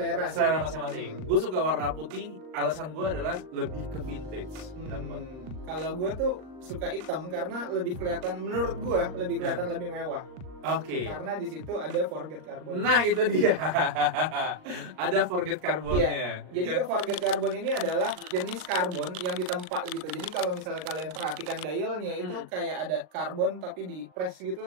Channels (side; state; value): left; late; 39 ms